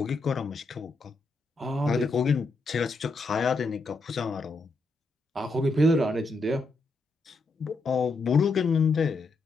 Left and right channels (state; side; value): quieter; right; 3.3 dB